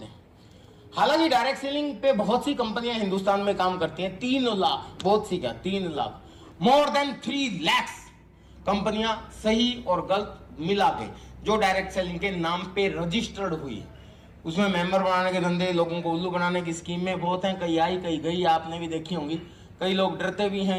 हैं। हालांकि डायरेक्ट सेलिंग पे बहुत सी कंपनियां हिंदुस्तान में काम करती हैं। 3 लाख, बहुत सी क्या, 3 लाख, मोर देन 3 लाख कंपनियां सही और गलत मिला के जो डायरेक्ट सेलिंग के नाम पे रजिस्टर्ड हुई है। उसमें मेंबर बनाने के धंधे, लोगों को उल्लू बनाने की स्कीमें बहुत हैं, कई आई कई गई, आपने भी देखी होंगी। कई लोग डरते भी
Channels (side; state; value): both; identical; correlation 1.00